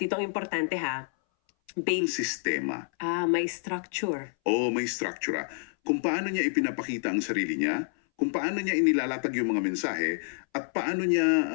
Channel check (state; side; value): silent; right; 59 dB below the other